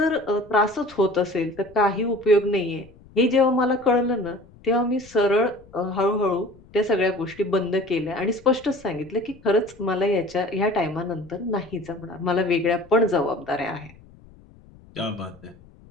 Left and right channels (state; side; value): noise; left; rumble, 24 dB below the sound